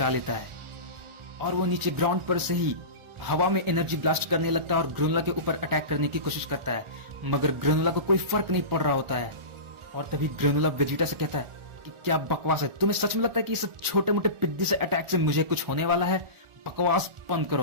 लेता है और वो नीचे ग्राउंड पर से ही हवा में एनर्जी ब्लास्ट करने लगता है और ग्रेनुला के ऊपर अटैक करने की कोशिश करता है, मगर ग्रेनुला को कोई फर्क नहीं पड़ रहा होता है। और तभी ग्रेनुला वेजिटा से कहता है कि क्या बकवास है, तुम्हें सच में लगता है कि इस छोटे मोटे पिद्दी से अटैक से मुझे कुछ होने वाला है? बकवास बंद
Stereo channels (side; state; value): left; late; 1.4 ms